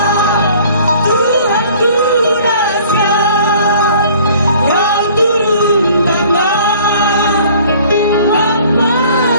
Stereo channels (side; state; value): both; inverted; correlation -0.53